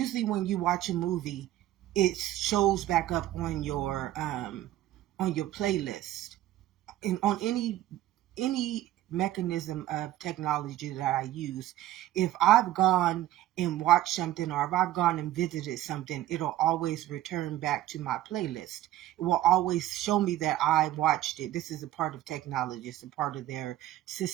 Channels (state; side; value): quieter; left; 14.0 dB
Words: when you watch a movie, it shows back up on your playlist, and on any mechanism of technology that I use. If I've gone and watched something, or if I've gone and visited something, it'll always return back to my playlist. It will always show me that I watched it. This is a part of technology. It's a part of their